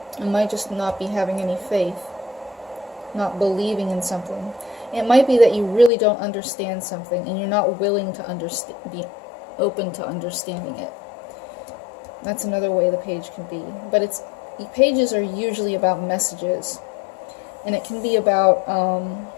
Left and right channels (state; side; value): drops out; right; at 5.9 s